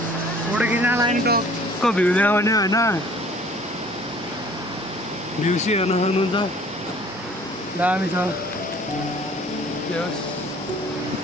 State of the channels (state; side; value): normal; both; correlation 0.53